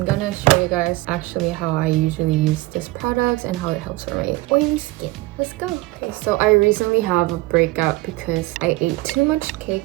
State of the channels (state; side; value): quieter; left; 20.0 dB